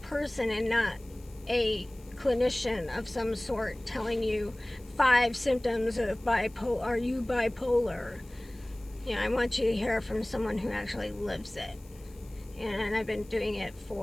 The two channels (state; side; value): noise; left; hiss, 26 dB below the sound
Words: and not a clinician of some sort telling you 5 symptoms of bipolar. Are you bipolar? I want you to hear from someone who actually lives it. And I've been doing it